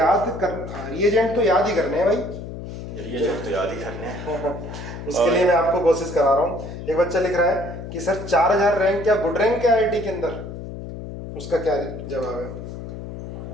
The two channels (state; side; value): noise; left; hum, 9 dB below the sound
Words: कर, रिएजेंट तो याद ही करने हैं भाई, रिएजेंट तो याद ही करने हैं। उसके लिए मैं आपको कोशिश करा रहा हूँ। एक बच्चा लिख रहा है कि सर 4000 रैंक क्या गुड रैंक है आईआईटी के अंदर? उसका क्या जवाब है?